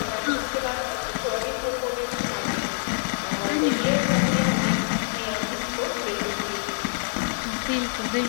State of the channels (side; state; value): right; silent; digital silence